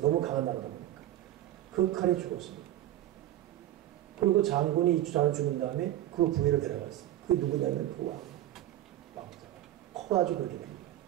너무 강한 나라다 보니까. 그 칼에 죽었습니다. 그리고 장군이 주장을 죽인 다음에 그 부위를 데려갔어요. 그게 누구냐면 그 왕자가 커가지고 그렇게 됩니다.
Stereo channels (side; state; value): left; quieter; 13.4 dB